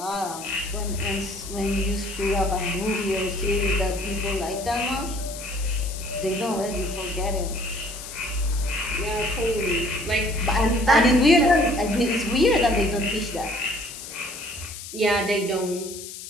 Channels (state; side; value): noise; left; hiss, 11 dB below the sound